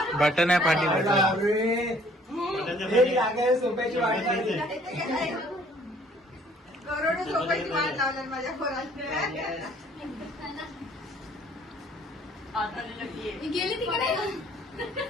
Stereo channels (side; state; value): both; normal; correlation 0.59